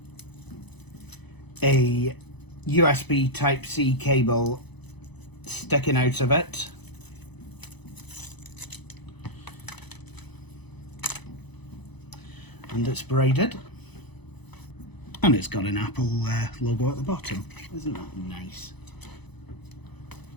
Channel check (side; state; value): right; late; 0.99 ms